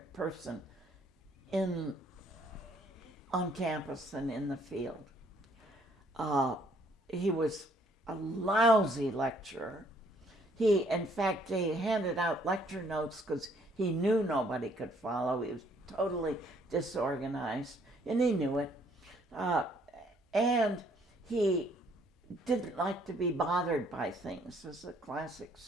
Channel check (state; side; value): normal; both; correlation 0.64